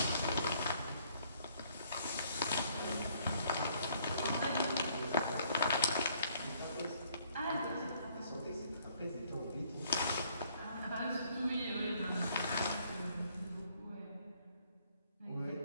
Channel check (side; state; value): both; inverted; correlation -0.65